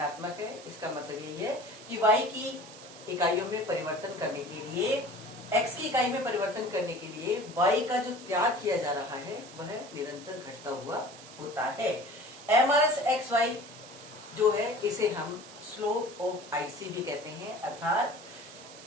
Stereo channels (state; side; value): noise; right; hiss, 17 dB below the sound